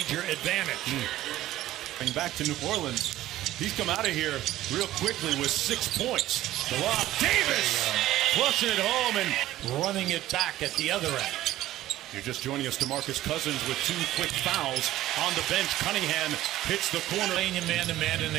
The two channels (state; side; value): quieter; left; 14.7 dB